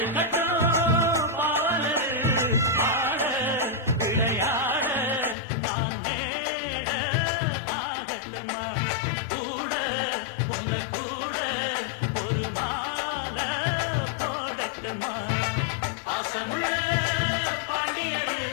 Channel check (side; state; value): right; drops out; at 5.4 s